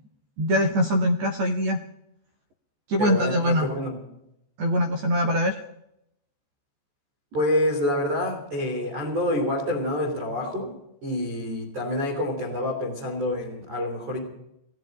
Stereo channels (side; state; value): left; late; 14 ms